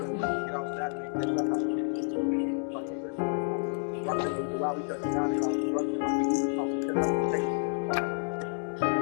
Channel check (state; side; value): silent; right; digital silence